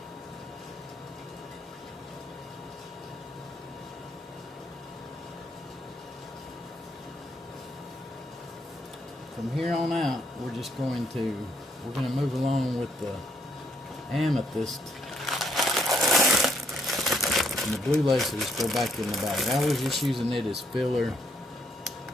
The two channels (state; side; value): normal; both; correlation 0.72